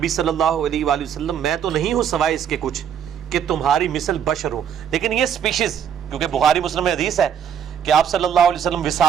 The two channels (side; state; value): left; quieter; 8.6 dB